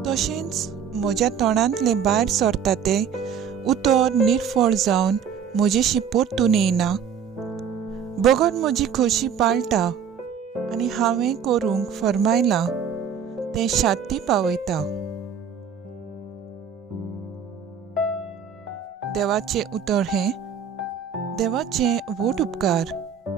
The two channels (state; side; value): quieter; left; 7.5 dB